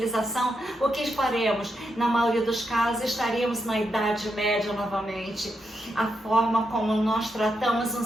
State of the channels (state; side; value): normal; both; correlation 0.83